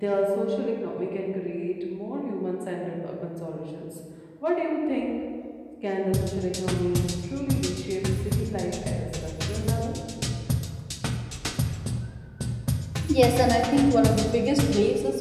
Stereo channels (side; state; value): both; identical; correlation 1.00